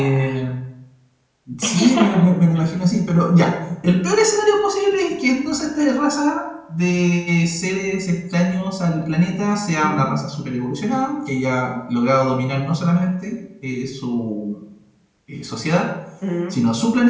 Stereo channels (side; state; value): both; identical; correlation 1.00